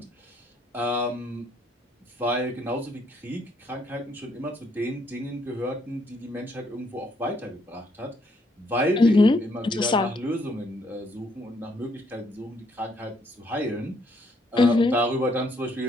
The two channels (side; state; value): both; normal; correlation 0.70